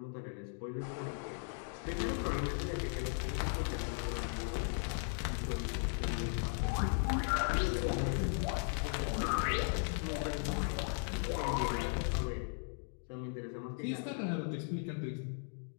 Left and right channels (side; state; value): right; silent; 53 dB below the other